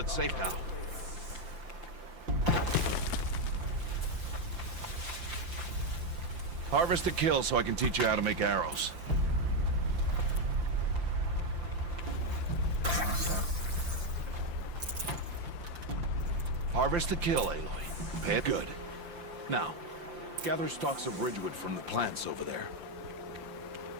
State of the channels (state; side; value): late; left; 5.8 ms